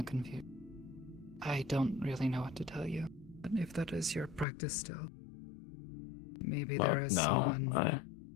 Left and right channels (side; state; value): right; drops out; at 4.5 s